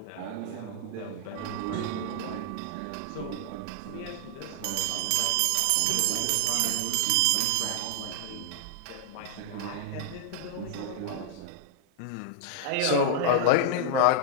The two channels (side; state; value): both; different; correlation -0.01